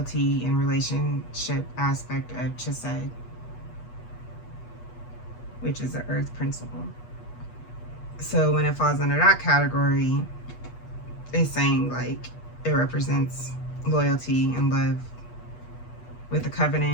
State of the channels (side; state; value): right; late; 8.2 ms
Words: and relationship aspect of Chesed, which is the earth principle. So when it falls under that category, it's saying like it represents loyalty and love with a